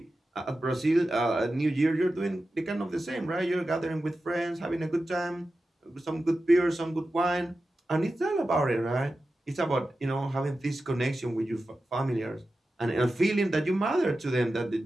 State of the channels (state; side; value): normal; both; correlation 0.93